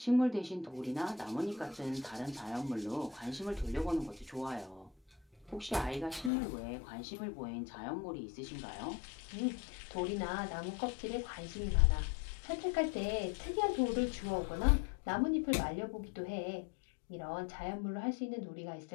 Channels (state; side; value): drops out; right; at 6.3 s